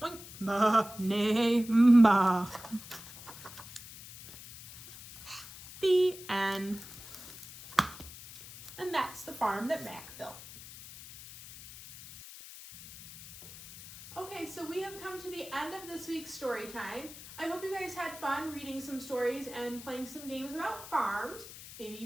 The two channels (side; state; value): left; noise; hiss, 15 dB below the sound